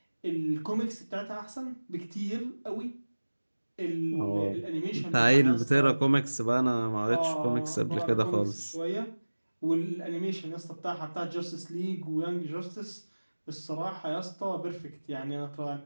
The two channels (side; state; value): both; inverted; correlation -1.00